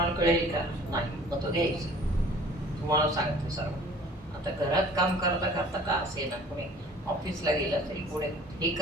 कळेल का? नाही. मग तो घ्यायचा. तुम्हाला सांगते सर्व. आता घरात काम करता करता का असे ना, कोणी ऑफिसला गेला तरी पुढे हे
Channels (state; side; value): normal; both; correlation 0.50